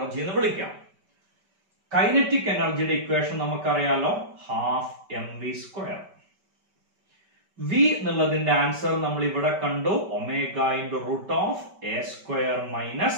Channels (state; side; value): late; left; 5.2 ms